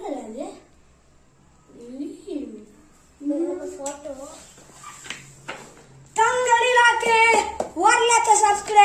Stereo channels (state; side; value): identical; both; correlation 1.00